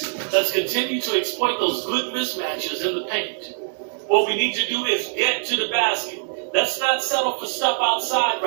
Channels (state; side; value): silent; left; digital silence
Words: Let's continue to exploit those good mismatches in the paint. What we need to do is get to the basket. Let's not settle for stuff outside